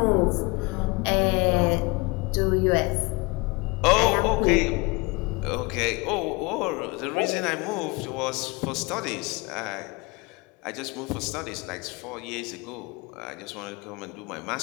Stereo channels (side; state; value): right; quieter; 26.3 dB